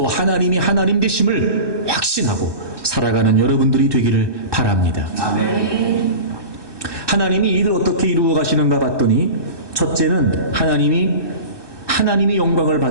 하나님이 하나님 되심을 확신하고 살아가는 여러분들이 되기를 바랍니다. 아멘. 하나님이 이를 어떻게 이루어 가시는가 봤더니, 첫째는 하나님이 영광을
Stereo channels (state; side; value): late; left; 1.2 ms